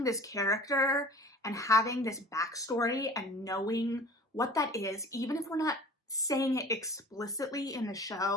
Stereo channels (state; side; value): normal; both; correlation 0.44